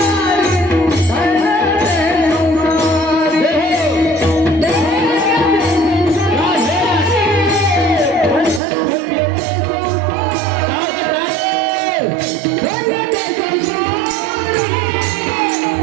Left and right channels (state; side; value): drops out; left; at 8.6 s